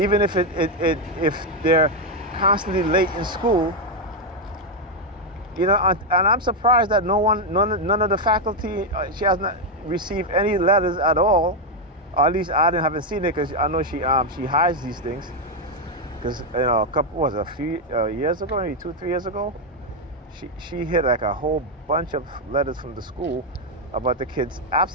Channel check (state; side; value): normal; both; correlation 0.03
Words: if if they're constantly late in school. And I'm surprised that none of the faculty, she has not received any letters at all, or at least I haven't seen it, because I know she hides these things. Because a few years ago, maybe 2-3 years ago, she hit like a whole bunch of letters from the school about the kids'